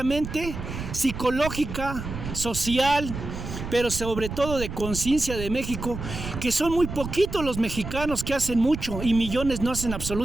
psicológica, social, pero sobre todo de conciencia de México, que son muy poquitos los mexicanos que hacen mucho y millones no hacen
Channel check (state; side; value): noise; right; rumble, 7 dB below the sound